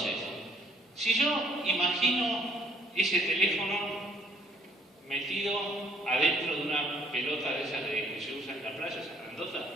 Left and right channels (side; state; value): both; normal; correlation 0.61